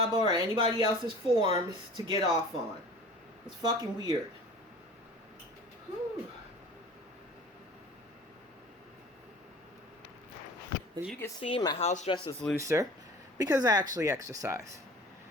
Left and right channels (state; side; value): normal; both; correlation 0.43